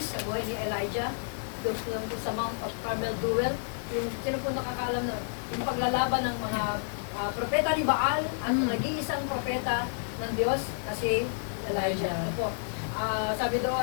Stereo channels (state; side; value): silent; right; 58 dB below the other